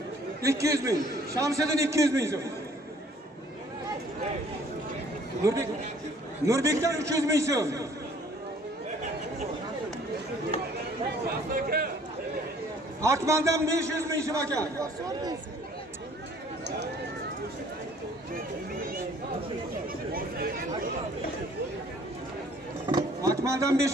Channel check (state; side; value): normal; both; correlation 0.57